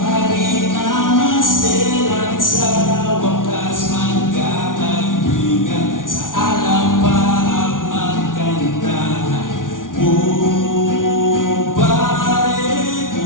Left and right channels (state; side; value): late; right; 0.88 ms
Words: na maselan. Sa wakas magkakaibigan, sa alam pa ang magkantahan. Oh, pare